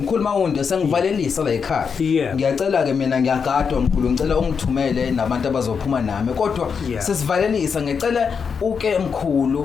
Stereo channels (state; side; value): quieter; right; 6.1 dB